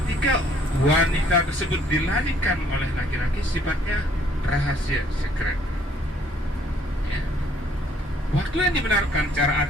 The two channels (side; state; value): both; normal; correlation 0.62